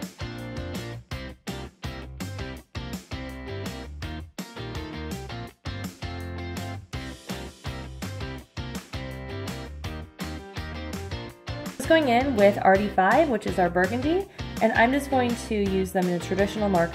Going in with RD5, which is our burgundy, and I'm just going to use them in a traditional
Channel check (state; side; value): identical; both; correlation 1.00